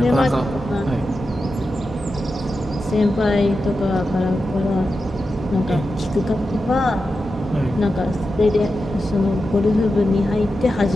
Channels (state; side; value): normal; both; correlation 0.90